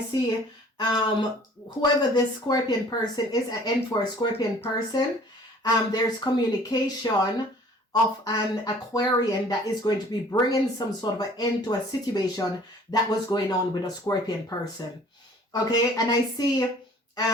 whoever this Scorpion person is, an end for a Scorpion person. There's communication of an Aquarian that is going to be bringing some sort of an end to a situation that was going on with a Scorpion person. Okay, and I see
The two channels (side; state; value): both; normal; correlation 0.52